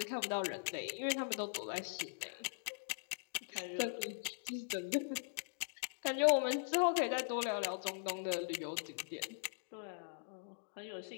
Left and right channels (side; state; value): right; silent; digital silence